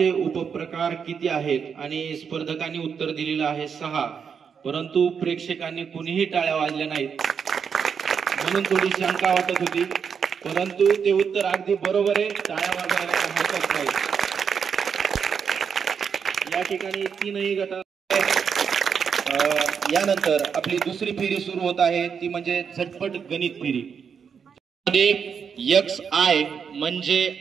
उपप्रकार किती आहेत? आणि स्पर्धकांनी उत्तर दिलेलं आहे 6, परंतु प्रेक्षकांनी कुणीही टाळ्या वाजल्या नाहीत, म्हणून थोडी शंका वाटत होती, परंतु ते उत्तर अगदी बरोबर आहे। टाळ्या वाजवायला हरकत नाही। या ठिकाणी 3ही गट। यानंतर आपली दुसरी फेरी सुरू होत आहे, ती म्हणजे झटपट गणित फेरी। XI म्हणजे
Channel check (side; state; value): left; quieter; 6.7 dB